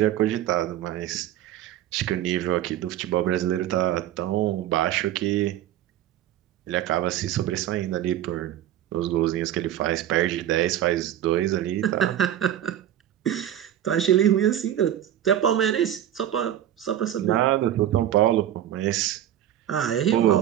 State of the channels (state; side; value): quieter; left; 11.6 dB